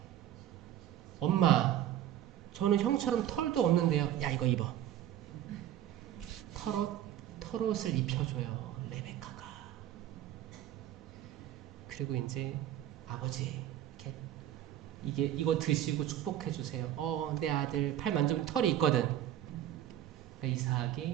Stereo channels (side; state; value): left; quieter; 11.7 dB